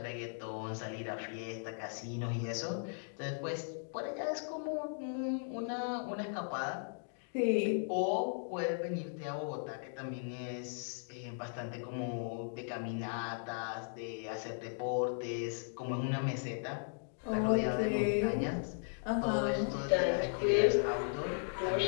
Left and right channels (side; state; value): right; silent; digital silence